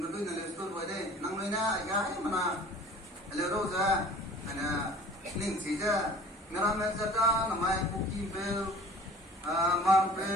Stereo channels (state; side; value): normal; both; correlation 0.46